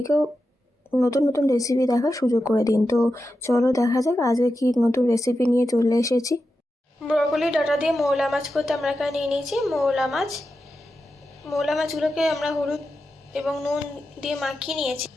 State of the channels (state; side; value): normal; both; correlation 0.90